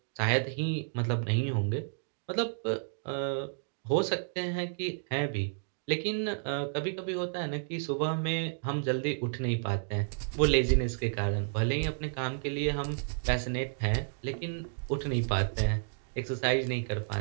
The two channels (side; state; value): left; silent; digital silence